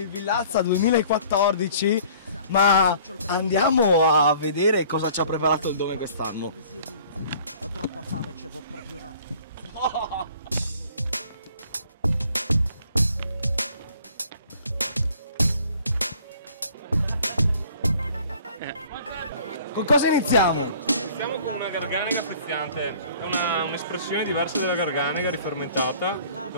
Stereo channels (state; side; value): inverted; both; correlation -0.53